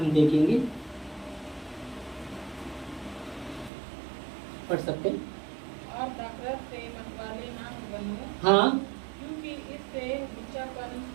देखेंगे, पढ़ सकते हैं। और नफरत से मतवाले ना बनो, हाँ, क्योंकि इससे लुच्चापन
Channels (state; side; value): drops out; left; at 3.7 s